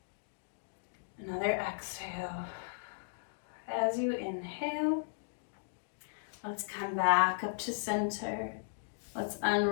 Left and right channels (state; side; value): silent; right; digital silence